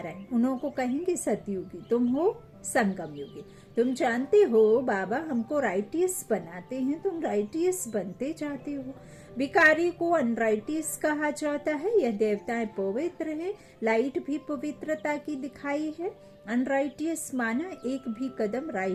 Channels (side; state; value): both; identical; correlation 1.00